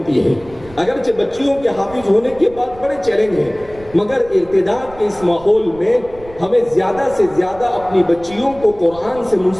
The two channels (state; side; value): noise; right; rumble, 20 dB below the sound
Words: ہیں. اگرچہ بچیوں کے حافظ ہونے کے بعد بڑے چیلنج ہیں، مگر ارتداد کے اس ماحول میں ہمیں زیادہ سے زیادہ اپنی بچیوں کو قرآن سے